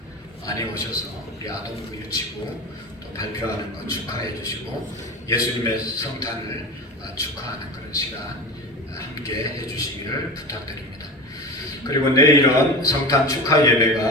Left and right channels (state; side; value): normal; both; correlation 0.29